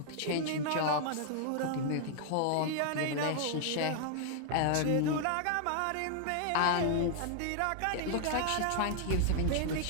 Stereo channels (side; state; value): both; different; correlation 0.00